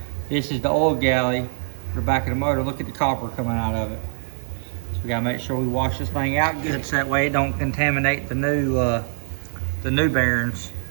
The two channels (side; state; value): left; silent; digital silence